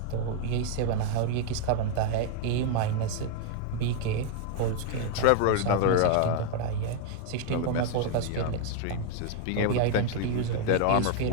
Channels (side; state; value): both; different; correlation 0.00